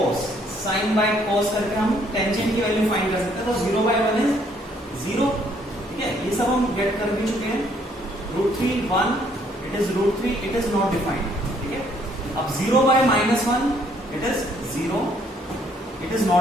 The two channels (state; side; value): normal; both; correlation 0.66